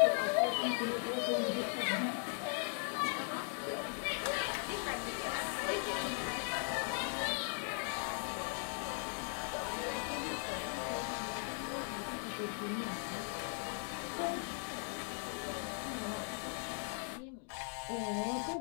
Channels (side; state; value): right; silent; 52 dB below the other